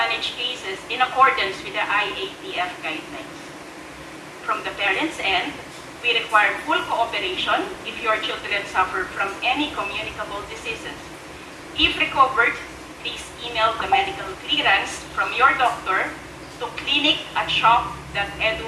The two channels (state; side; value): identical; both; correlation 1.00